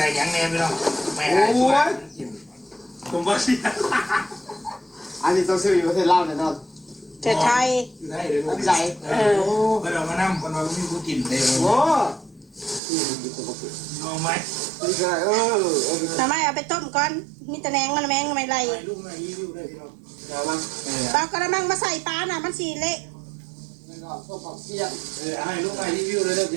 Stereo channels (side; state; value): left; drops out; at 12.8 s